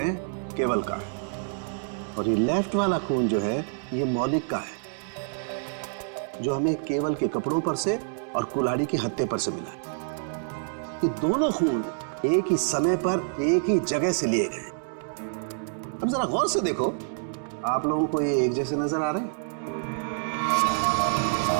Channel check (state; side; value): silent; left; digital silence